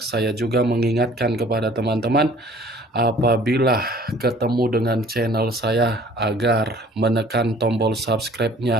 saya juga mengingatkan kepada teman-teman, apabila ketemu dengan channel saya, agar menekan tombol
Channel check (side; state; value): both; normal; correlation 0.53